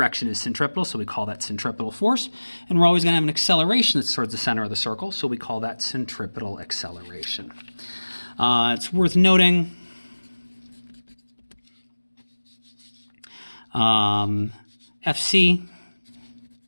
is centripetal, so we call that centripetal force. And we're always going to have an acceleration that's towards the center of the circle, so we call that centripetal acceleration. It's worth noting FC,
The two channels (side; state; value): both; inverted; correlation -1.00